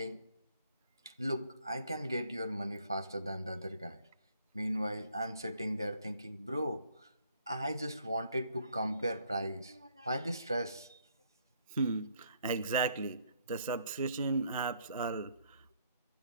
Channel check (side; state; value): both; inverted; correlation -0.68